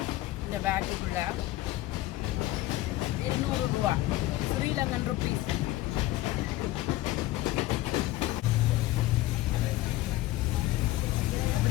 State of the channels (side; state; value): right; quieter; 16.7 dB